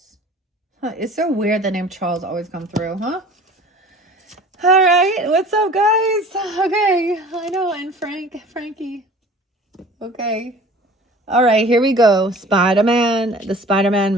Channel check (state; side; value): normal; both; correlation 0.45